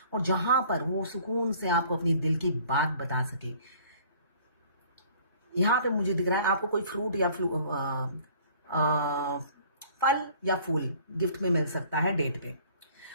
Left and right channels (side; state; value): both; inverted; correlation -0.53